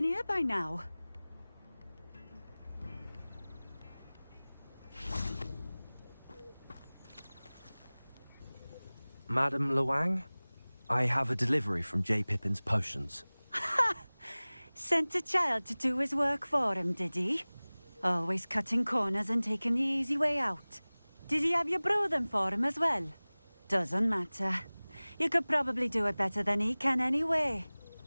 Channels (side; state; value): both; inverted; correlation -1.00